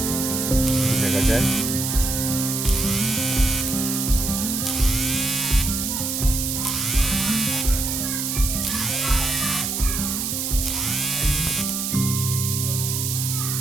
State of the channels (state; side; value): noise; right; hiss, 1 dB below the sound